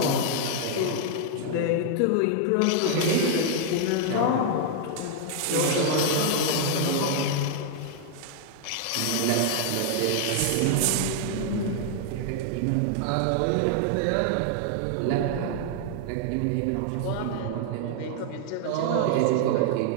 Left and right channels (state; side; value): different; both; correlation 0.00